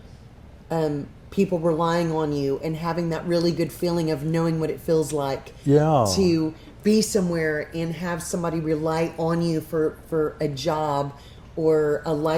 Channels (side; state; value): both; identical; correlation 1.00